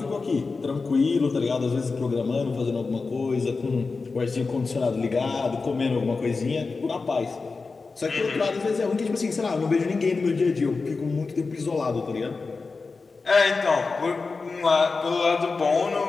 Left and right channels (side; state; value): right; quieter; 4.2 dB